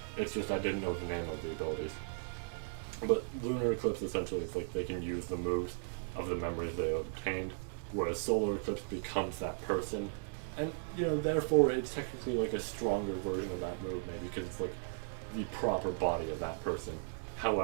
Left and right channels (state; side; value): silent; left; digital silence